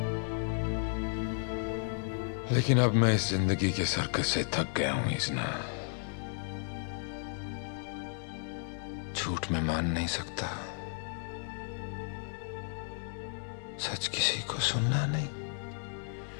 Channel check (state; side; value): silent; right; 56 dB below the other